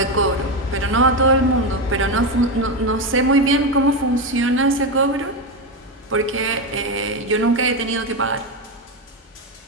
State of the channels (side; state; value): both; normal; correlation 0.12